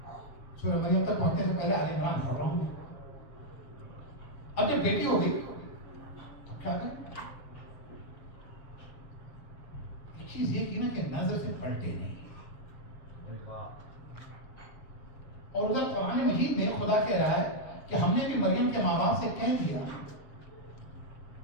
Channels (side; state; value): right; late; 7.3 ms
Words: सूरह मरियम तक पहुंचने से पहले आले इमरान पढ़ रहा हूं। अब जब बेटी हो गई तो क्या करें? एक चीज ये की ना कि नजर से पलटे नहीं। और उधर कुरान मजीद में खुदा कह रहा है कि हमने भी मरियम के माँ बाप से कह दिया